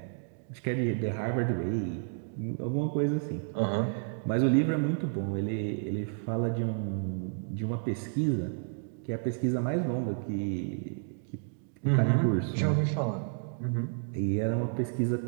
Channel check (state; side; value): silent; left; digital silence